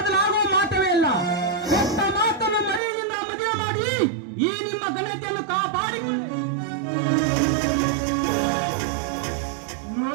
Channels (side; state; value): left; drops out; at 2.8 s